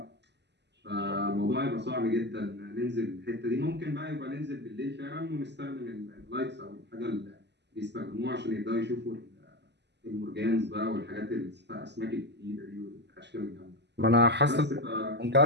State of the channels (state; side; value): late; left; 0.50 ms